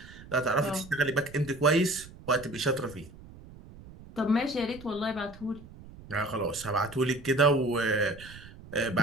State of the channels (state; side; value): noise; right; rumble, 18 dB below the sound